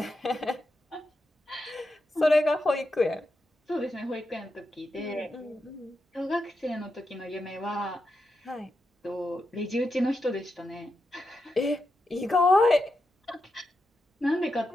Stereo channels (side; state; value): both; normal; correlation 0.87